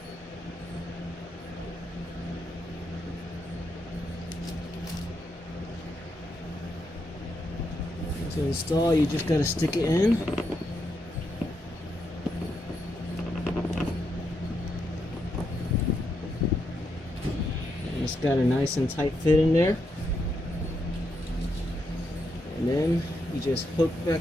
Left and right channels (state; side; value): normal; both; correlation 0.81